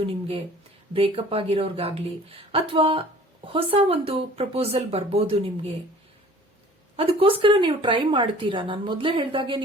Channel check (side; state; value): both; normal; correlation 0.49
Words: ನಿಮ್ಗೆ ಬ್ರೇಕಪ್ ಆಗಿರೋರ್ಗಾಗ್ಲಿ ಅಥವಾ ಹೊಸ ಒಂದು ಪ್ರಪೋಸಲ್ ಬರ್ಬೋದು ನಿಮ್ಗೆ. ಅದಕ್ಕೋಸ್ಕರ ನೀವು ಟ್ರೈ ಮಾಡ್ತೀರಾ. ನಾನು ಮೊದಲೇ ಹೇಳ್ದಾಗೆ